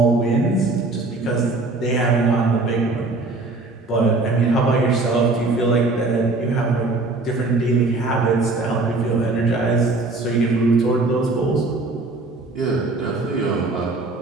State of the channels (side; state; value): left; quieter; 3.3 dB